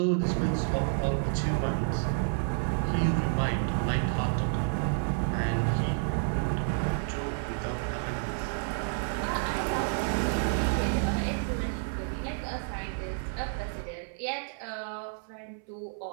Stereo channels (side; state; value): left; silent; 58 dB below the other